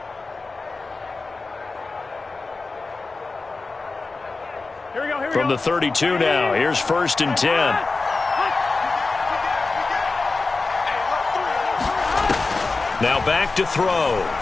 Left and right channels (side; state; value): right; quieter; 3.8 dB